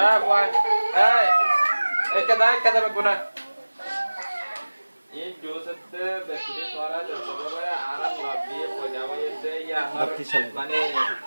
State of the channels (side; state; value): both; inverted; correlation -1.00